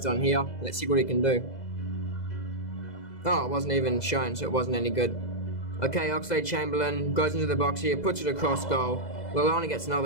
on here. Let's see what he can do. Oh, it wasn't even shown, so it wasn't any good. Okay, Oxlade-Chamberlain goes into the box here, puts it across goal. Lallana gets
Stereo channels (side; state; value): right; late; 2.0 ms